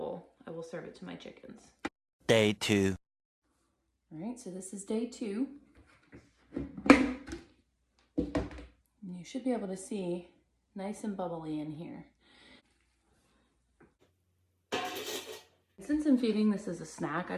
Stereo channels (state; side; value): identical; both; correlation 1.00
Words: serve it to my chickens. Day 2. All right, so this is day 2. And you should be able to see nice and bubbly in here. Since I'm feeding this as a snack, I